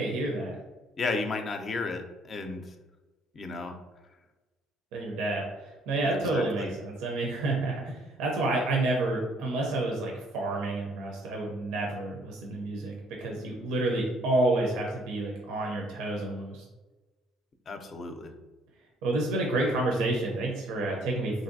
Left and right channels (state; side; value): normal; both; correlation 0.64